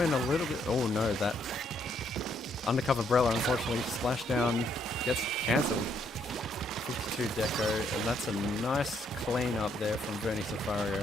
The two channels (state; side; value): normal; both; correlation 0.71